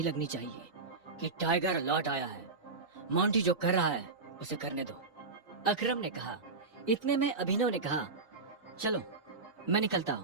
लगनी चाहिए कि टाइगर लौट आया है। मोंटी जो कर रहा है उसे करने दो, अकरम ने कहा। इतने में अभिनव ने कहा, चलो मैं निकलता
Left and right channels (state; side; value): quieter; left; 4.0 dB